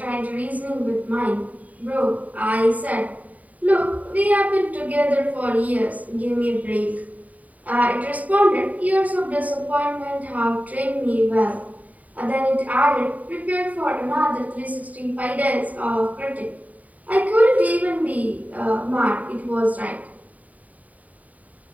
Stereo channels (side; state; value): left; late; 0.072 ms